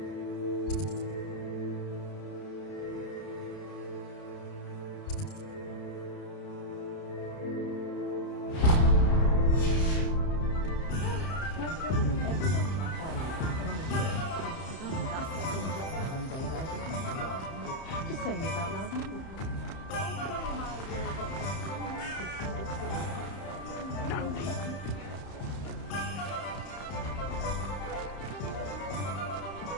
Just saying it out loud.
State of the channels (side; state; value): right; late; 31 ms